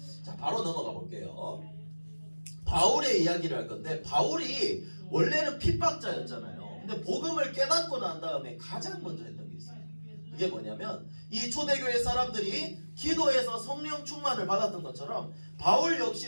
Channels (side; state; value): both; inverted; correlation -1.00